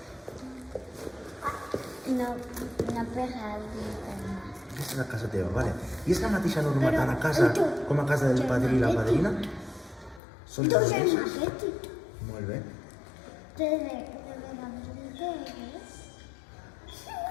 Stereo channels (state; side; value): drops out; right; at 10.2 s